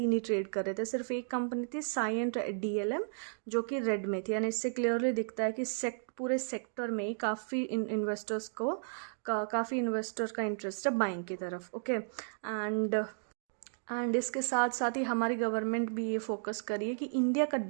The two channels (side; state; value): left; silent; digital silence